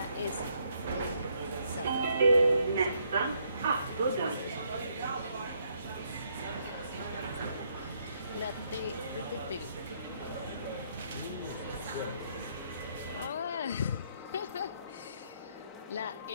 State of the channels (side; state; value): both; inverted; correlation -0.72